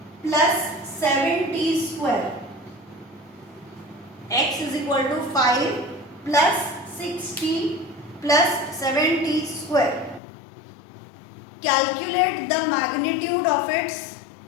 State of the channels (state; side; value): drops out; right; at 10.2 s